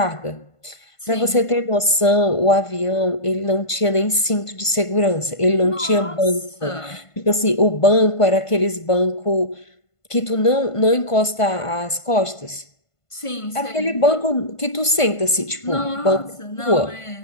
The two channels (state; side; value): late; right; 1.5 ms